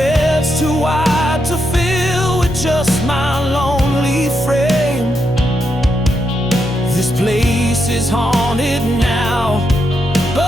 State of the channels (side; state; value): both; normal; correlation 0.82